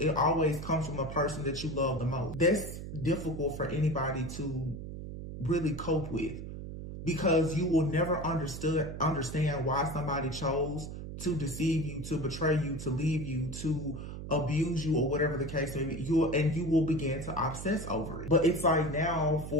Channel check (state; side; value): noise; right; hum, 9 dB below the sound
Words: comes from the person that you love the most. That's difficult for anybody to really cope with, because you will never understand why somebody chose to deceive you, to betray you, to leave you, to abuse you, or whatever the case may be. You will begin to obsess over it. But it's like now,